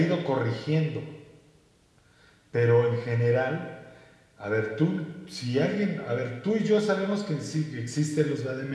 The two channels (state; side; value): identical; both; correlation 1.00